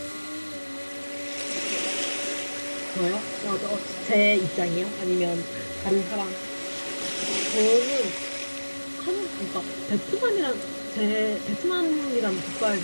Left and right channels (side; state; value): both; inverted; correlation -1.00